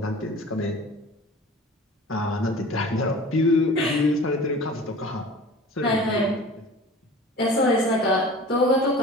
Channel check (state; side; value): normal; both; correlation 0.41